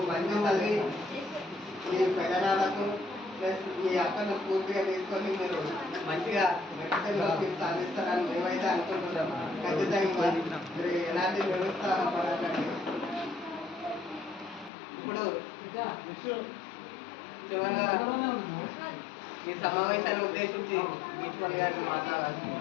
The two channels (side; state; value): right; drops out; at 14.7 s